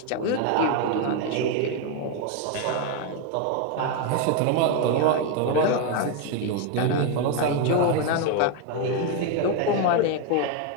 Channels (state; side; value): different; both; correlation 0.01